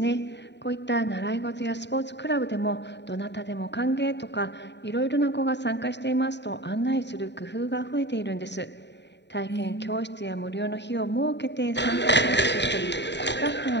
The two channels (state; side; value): late; right; 0.51 ms